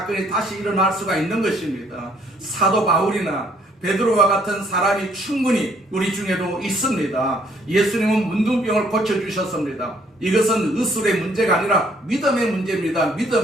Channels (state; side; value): normal; both; correlation 0.65